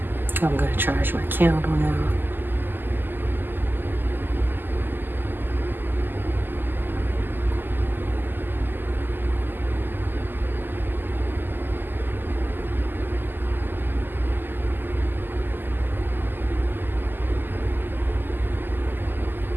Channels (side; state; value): left; late; 0.092 ms